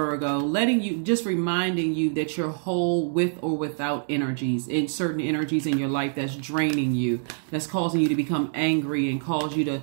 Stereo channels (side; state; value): left; silent; digital silence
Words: reminding you that you're whole with or without energies, in certain energies in your life that's draining you, that's causing you to become angry and cause you to